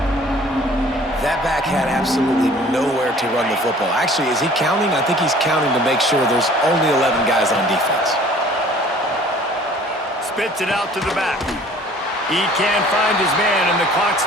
That back had absolutely nowhere to run the football. Actually, is he counting? I think he's counting to make sure there's only 11 guys on defense. Spits it out to the back. He can't find his man, and the clock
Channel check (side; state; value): both; normal; correlation 0.51